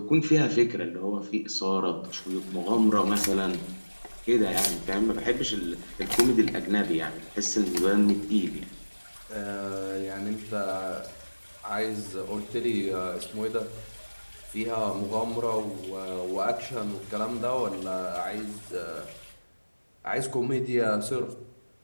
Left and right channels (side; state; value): both; inverted; correlation -1.00